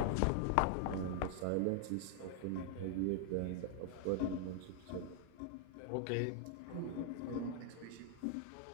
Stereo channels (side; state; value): both; different; correlation 0.00